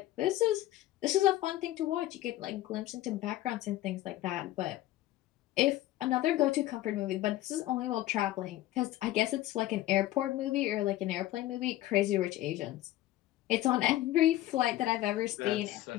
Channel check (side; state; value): right; quieter; 15.1 dB